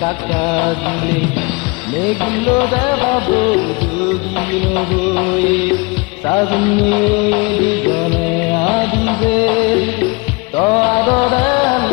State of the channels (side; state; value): right; quieter; 27.9 dB